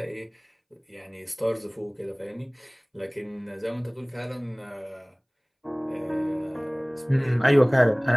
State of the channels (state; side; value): identical; both; correlation 1.00